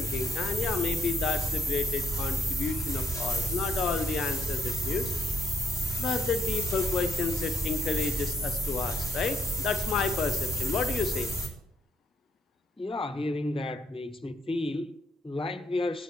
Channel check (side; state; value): both; normal; correlation 0.71